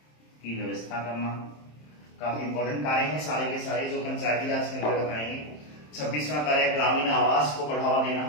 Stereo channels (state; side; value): late; right; 27 ms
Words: की व्यवस्था करना। काफी इंपॉर्टेंट कार्य हैं सारे के सारे जो पंचायती राज के अंतर्गत आएंगे। 26वां कार्य ग्रामीण आवास को बढ़ावा देना,